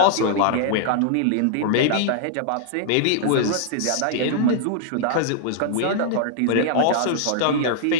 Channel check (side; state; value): both; different; correlation -0.01